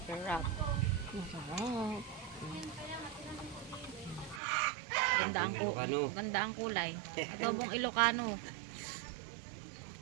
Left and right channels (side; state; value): left; drops out; at 4.4 s